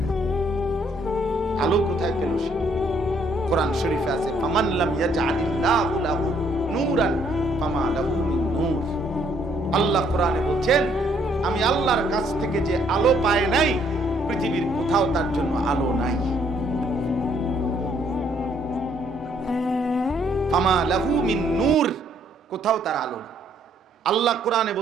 আলো কোথায় পেল সে? কোরআন শরীফে আছে, ফামান লাম ইয়াজআলিল্লাহু লাহু নূরান ফামা লাহু মিন নূর। আল্লাহ কোরআনে বলছেন, আমি আল্লাহর কাছ থেকে যে আলো পায় নাই, পৃথিবীর কোথাও তার জন্য আলো নাই। ফামা লাহু মিন নূর, কোথাও তার আলো নেই। আল্লাহ কোরআনে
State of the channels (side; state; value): both; normal; correlation 0.67